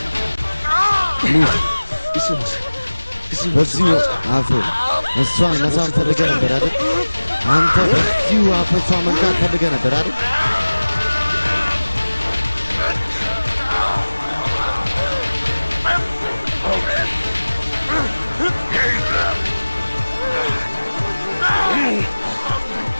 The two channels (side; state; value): both; inverted; correlation -1.00